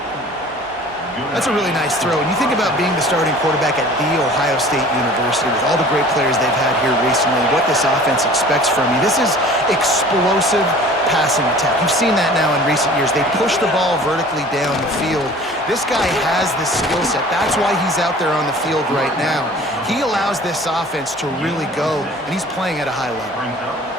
That's a really nice throw. And you think about being the starting quarterback at The Ohio State University with all the great players they've had here recently, what this offense expects from you. This is explosive passing attack. You've seen that now in recent years. They push the ball vertically down the field. This guy has the skill set. That's why he's out there on the field right now. He allows this offense to really go, and he's playing at a high level.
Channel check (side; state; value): both; normal; correlation 0.46